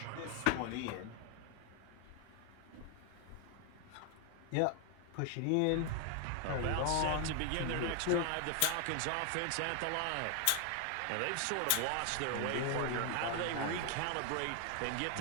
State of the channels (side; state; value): both; different; correlation 0.00